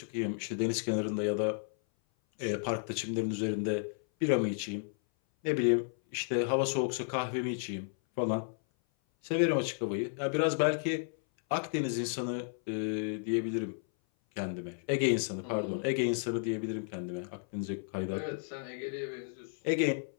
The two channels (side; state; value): right; silent; 56 dB below the other